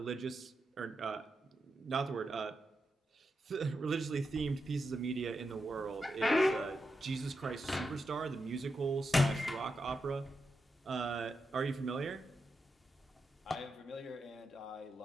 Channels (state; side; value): normal; both; correlation 0.87